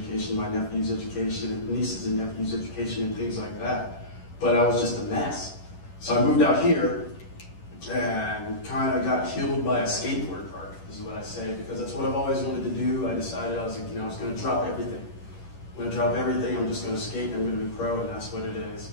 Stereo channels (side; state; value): right; late; 11 ms